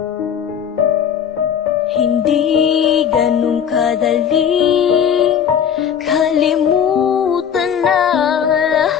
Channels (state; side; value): quieter; right; 8.3 dB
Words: ganun kadaling kalimutan na